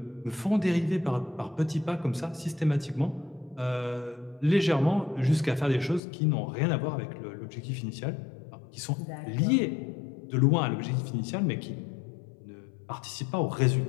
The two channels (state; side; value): drops out; right; at 6.0 s